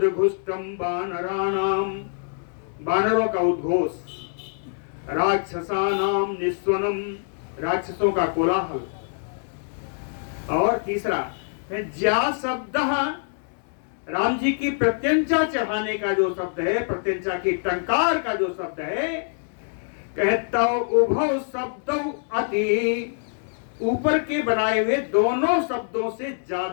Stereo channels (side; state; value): right; silent; 62 dB below the other